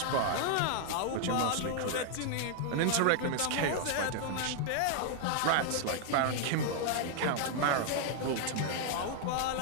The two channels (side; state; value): both; different; correlation 0.00